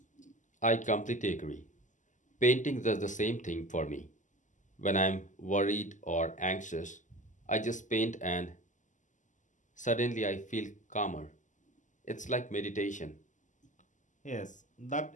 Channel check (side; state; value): right; late; 0.37 ms